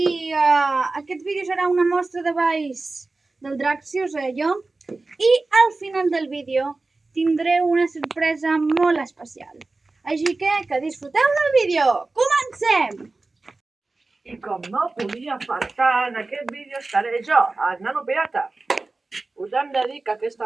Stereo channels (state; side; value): quieter; left; 3.4 dB